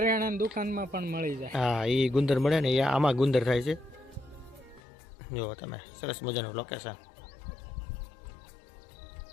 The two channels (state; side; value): drops out; right; at 4.8 s